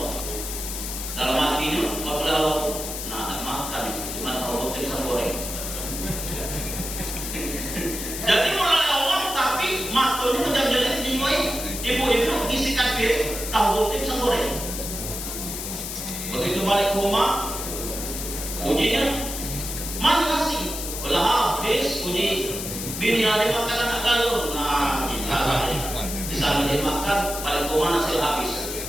Dalam hatinya apabila Allah makan cuma tahu putih pisang goreng. Jadi mulai Allah tapi matanya jam jeli jenguai. Ibu-ibu isikan piring tahu putih pisang goreng. Begitu balik ke rumah, ujinya mana nasi? Belah habis uji bini ada makan anak galur. Nah, kita di sana dia makan balik ke rumah nasi habis.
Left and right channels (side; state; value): left; noise; hiss, 6 dB below the sound